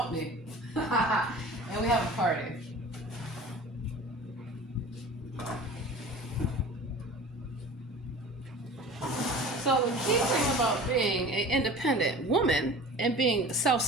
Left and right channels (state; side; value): normal; both; correlation 0.40